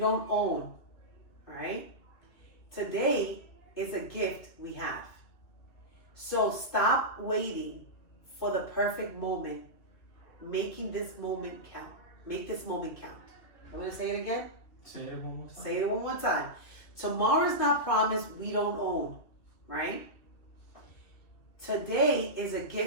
own, right? Today is a gift we have. So stop waiting for the perfect moment, making this moment count. Make this moment count. I'm gonna say it again. Say it one more time. Say it one more time. Tomorrow is not promised. We don't own, right? Today is a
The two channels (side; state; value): right; late; 2.7 ms